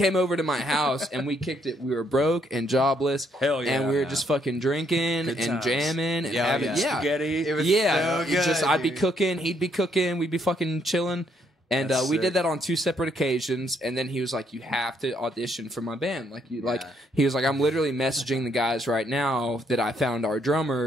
over to my house, and we kicked it. We were broke and jobless, Hell yeah. and we were just fucking drinking Good and times. jamming and Yeah, having yeah. yeah. Spaghetti. It was Yeah, so good, I'd be dude. cooking, he'd be cooking, we'd be fucking chilling. And That's we sick. did that on 2 separate occasions. And then he was like, "You have to audition for my band." Like Yeah. he was like, "I'm literally messaging the guys right now that I found our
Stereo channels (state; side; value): normal; both; correlation 0.71